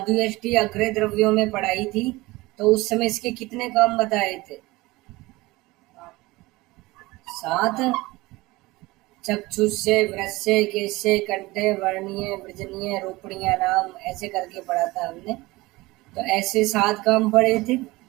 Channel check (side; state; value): left; quieter; 20.8 dB